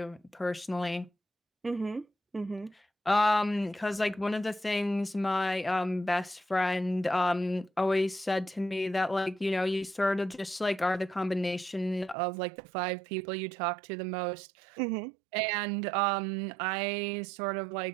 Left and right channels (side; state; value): left; drops out; at 12.2 s